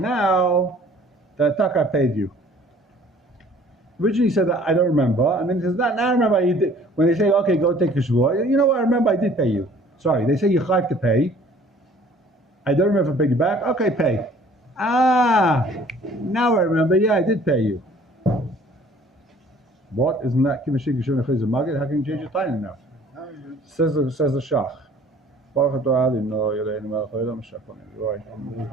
that I paid you. Originally he said that I don't remember, and then he says now I remember you did. When they say okay, go take a shvua, you know what? I remember I did pay you. Sorry, they say you have to pay. I don't remember if I paid you back. Okay, pay. Now I remember. Yeah, I did pay you. What? Isn't that Kimashik Yishon Echayz Magid? How can you change your time now? Says the Shach. Baruch Atah Ali, no, Yelei Melech Olam Shachon. Right.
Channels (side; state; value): both; normal; correlation 0.53